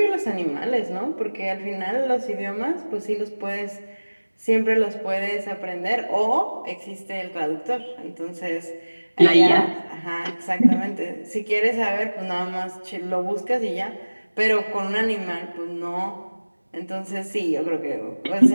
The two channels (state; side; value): inverted; both; correlation -1.00